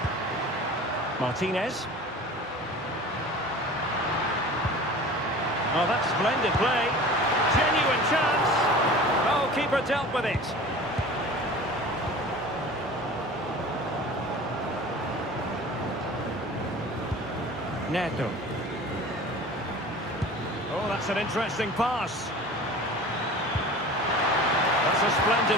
Martinez. Oh, that's splendid play. Genuine chance. Oh, keeper dealt with it. Neto. Oh, that's an interesting pass. That's a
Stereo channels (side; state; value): both; normal; correlation 0.39